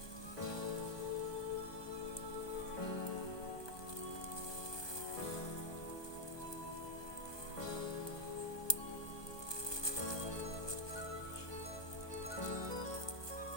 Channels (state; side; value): late; right; 1.2 ms